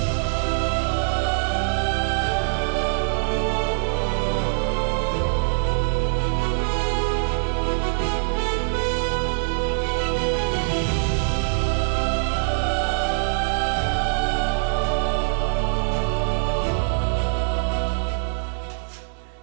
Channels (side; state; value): left; silent; digital silence